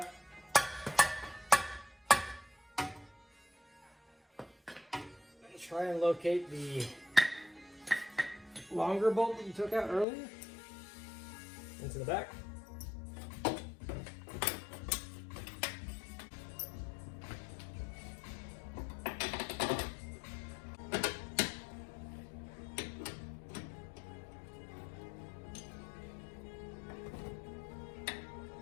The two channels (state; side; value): drops out; right; at 10.1 s